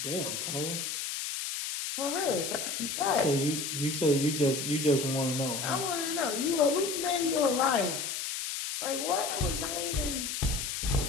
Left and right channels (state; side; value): noise; left; hiss, 3 dB below the sound